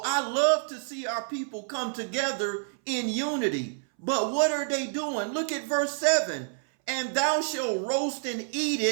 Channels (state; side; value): silent; left; 59 dB below the other